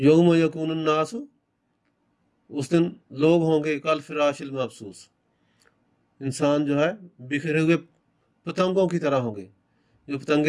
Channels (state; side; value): identical; both; correlation 1.00